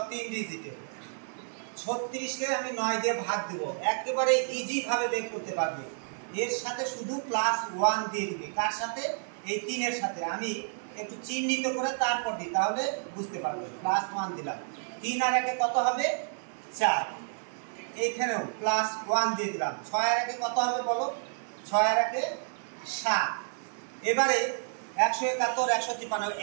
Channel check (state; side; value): silent; left; digital silence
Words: 3 ডিজিটের। 36কে আমি 9 দিয়ে ভাগ দেব, একেবারে ইজি ভাবে বের করতে পারবে। এর সাথে শুধু +1 দিয়ে দিবে। কার সাথে? এই 3 এর সাথে। আমি একটু চিহ্নিত করে তারপর দিই, তাহলে বুঝতে পারবে। +1 দিলাম। 3 আর 1 কত হবে? 4। এইখানেও +1 দিয়ে দিলাম। 6 আর 1 কত হবে বলো? 6 আর 1 7। এবারে 171, 153